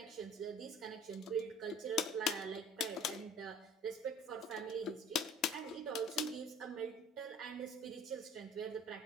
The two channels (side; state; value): both; normal; correlation 0.48